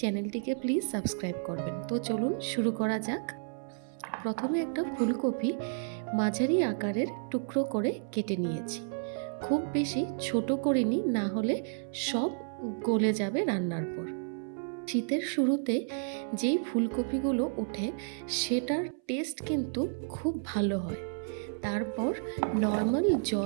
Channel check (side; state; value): left; silent; 57 dB below the other